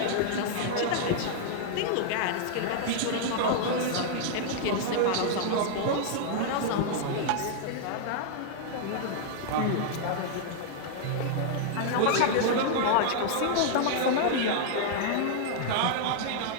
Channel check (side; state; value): both; different; correlation -0.01